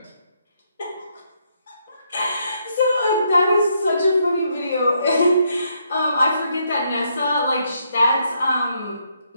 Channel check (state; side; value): inverted; both; correlation -0.75